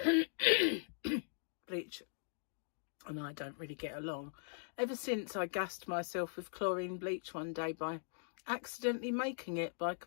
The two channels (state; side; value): silent; right; digital silence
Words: Bleach and I don't really get along. Ever since I gassed myself with chlorine bleach one day by accidentally making it by